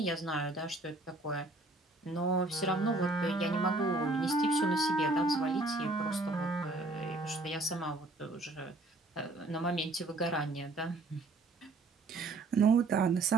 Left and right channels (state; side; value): quieter; left; 3.0 dB